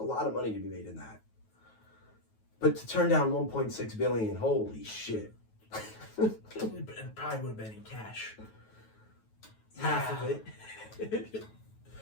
lot of money to be made in that. But to turn down 1.6 billion, holy shit! It probably would have been in cash. Half of it.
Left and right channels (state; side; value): late; right; 9.3 ms